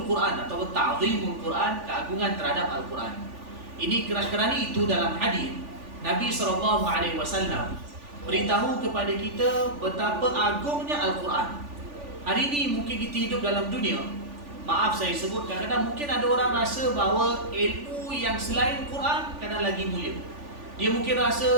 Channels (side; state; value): left; late; 3.4 ms